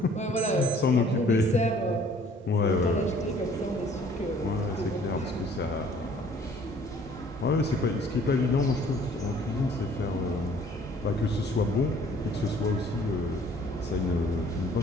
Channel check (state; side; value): normal; both; correlation 0.56